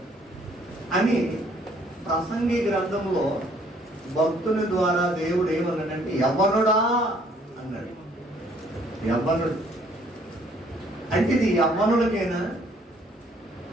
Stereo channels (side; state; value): both; normal; correlation 0.62